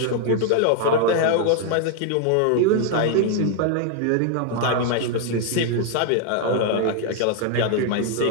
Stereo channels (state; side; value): different; both; correlation 0.00